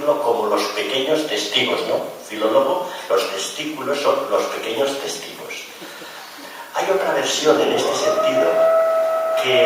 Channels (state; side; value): identical; both; correlation 1.00